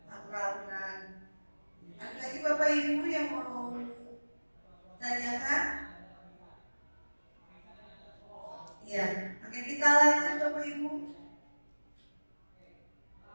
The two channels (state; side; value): inverted; both; correlation -1.00